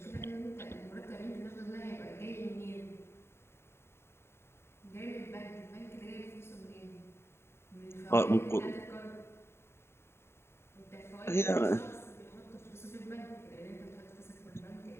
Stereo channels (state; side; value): late; right; 0.12 ms